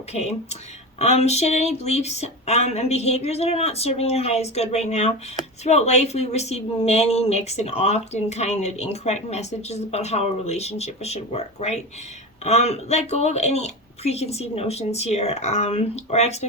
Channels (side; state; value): both; normal; correlation 0.24